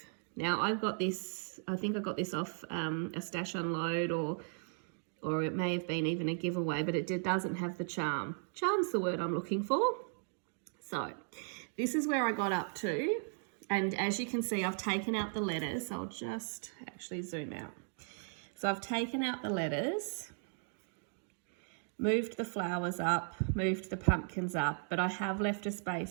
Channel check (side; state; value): left; silent; 53 dB below the other